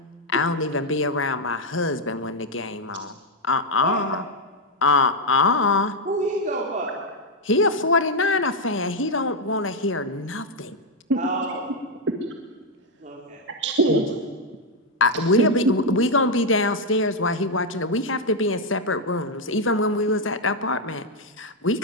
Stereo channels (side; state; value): both; normal; correlation 0.01